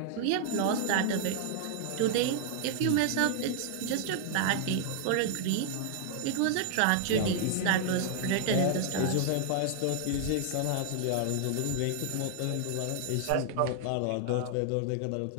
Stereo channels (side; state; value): both; different; correlation 0.00